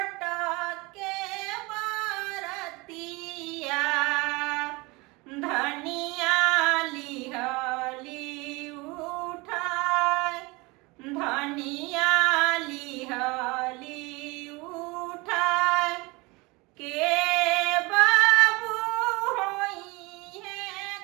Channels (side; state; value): left; quieter; 25.0 dB